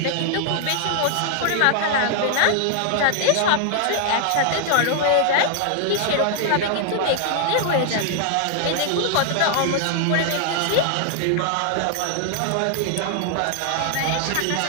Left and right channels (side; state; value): both; different; correlation 0.00